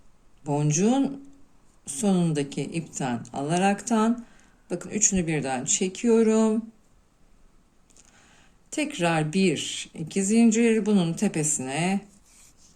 boncuğun sonundaki ipten alaraktan bakın üçünü birden çekiyorum. Tekrar 1, 2 zincir bunun tepesine.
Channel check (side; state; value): both; identical; correlation 1.00